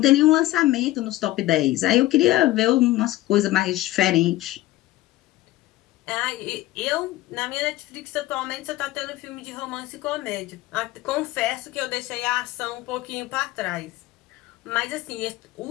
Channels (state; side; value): quieter; right; 16.6 dB